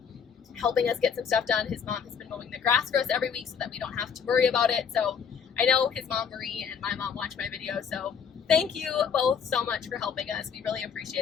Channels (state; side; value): quieter; right; 6.8 dB